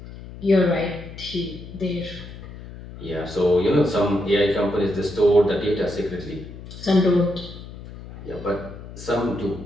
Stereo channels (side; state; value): left; noise; hum, 14 dB below the sound